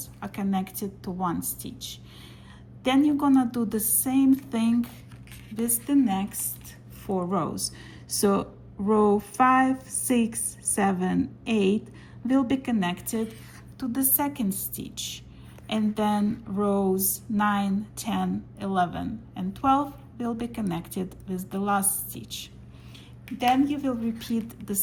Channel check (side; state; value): both; identical; correlation 1.00